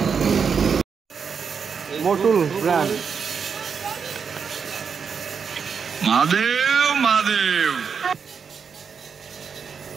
মোটুল ব্র্যান্ড। মহাদেব মহাদেব।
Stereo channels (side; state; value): left; quieter; 6.2 dB